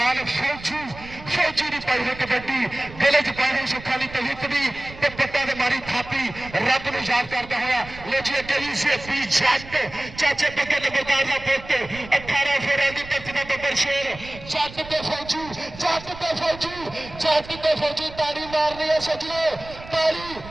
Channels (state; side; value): noise; right; rumble, 16 dB below the sound